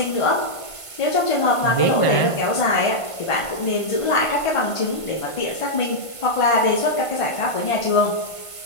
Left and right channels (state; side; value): late; right; 1.5 ms